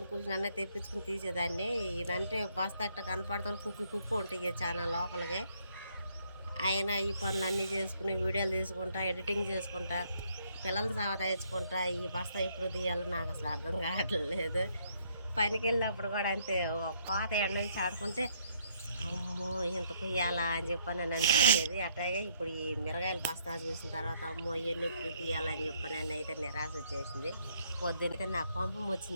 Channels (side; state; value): both; inverted; correlation -0.69